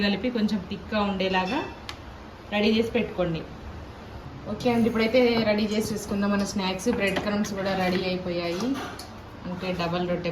కలిపి కొంచెం థిక్గా ఉండేలాగా రెడీ చేసి పెట్టుకోండి. ఓకే అండి, ఇప్పుడైతే రెడీ చేసి చూసుకుందాం మన స్నాక్స్. బ్రెడ్ క్రమ్స్ కూడా రెడీ అయిపోయాయి. అంటే డబల్ రొట్టె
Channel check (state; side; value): identical; both; correlation 1.00